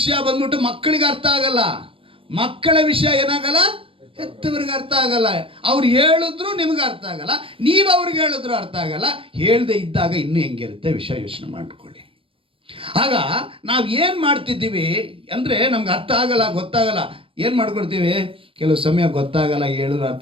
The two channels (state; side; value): late; left; 0.26 ms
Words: ಬಂದ್ಬಿಟ್ಟು ಮಕ್ಕಳಿಗೆ ಅರ್ಥ ಆಗಲ್ಲ, ಮಕ್ಕಳ ವಿಷಯ ಏನಾಗಲ್ಲ, ಹೆತ್ತವರಿಗೆ ಅರ್ಥ ಆಗಲ್ಲ. ಅವ್ರು ಹೇಳಿದ್ರು ನಿಮ್ಗೆ ಅರ್ಥ ಆಗಲ್ಲ, ನೀವು ಅವ್ರಿಗೆ ಹೇಳಿದ್ರು ಅರ್ಥ ಆಗಲ್ಲ. ಹೇಳ್ದೆ ಇದ್ದಾಗ ಇನ್ನೂ ಹೆಂಗಿರುತ್ತೆ ವಿಷಯ ಯೋಚನೆ ಮಾಡ್ಕೊಳ್ಳಿ. ಆಗ ನಾವು ಏನು ಮಾಡ್ತಿದ್ದೀವಿ ಅಂದರೆ ನಮ್ಗೆ ಅರ್ಥ ಆಗಲ್ಲ, ಗೊತ್ತಾಗಲ್ಲ, ಏನು ಮಾಡ್ಕೊಡ್ತೀವಿ? ಕೆಲವು ಸಮಯ ಗೊತ್ತಾಗಲ್ಲ, ಹೇಳಿದ್ರು